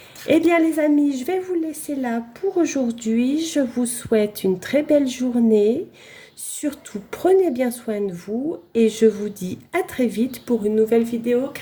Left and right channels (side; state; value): both; identical; correlation 1.00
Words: Eh bien les amis, je vais vous laisser là pour aujourd'hui. Je vous souhaite une très belle journée. Surtout, prenez bien soin de vous et je vous dis à très vite pour une nouvelle vidéo